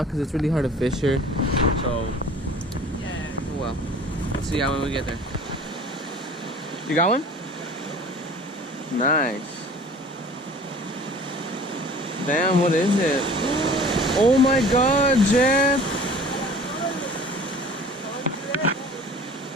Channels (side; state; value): both; normal; correlation 0.46